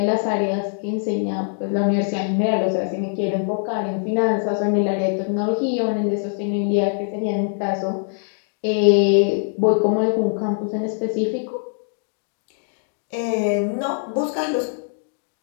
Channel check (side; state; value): right; silent; 64 dB below the other